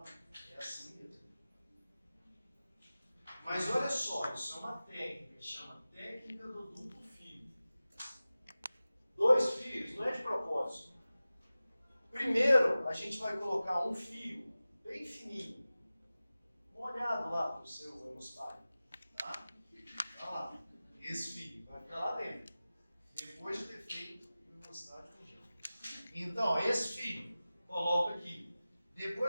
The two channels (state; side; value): inverted; both; correlation -0.96